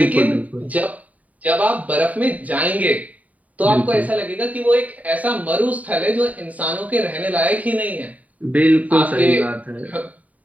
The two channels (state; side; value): late; left; 0.071 ms